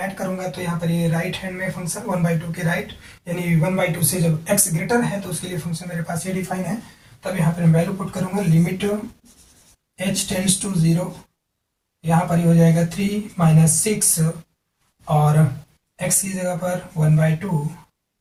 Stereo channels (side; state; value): both; identical; correlation 1.00